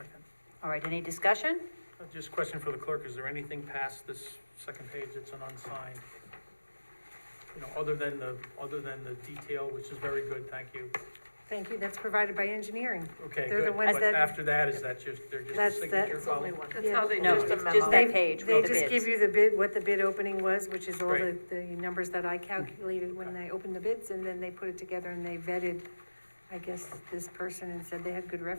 All right, any discussion? Just a question for the clerk, is there anything past this second page that's an unsigned? You know, other than the detail, which is very good, thank you. Thank you, that's provided by engineering. Okay, They're the good, ones but that- after that, is that just, they're just a That's signature that- follow? That's how they No, do Just it. a it's just memo. that page They with the just bids. give you the bid, what the bid opening was, which is all Great. the numbers that I calculated when I opened the bids, and then they put it together and they vetted, I guess, this person and said they had good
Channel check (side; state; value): both; inverted; correlation -1.00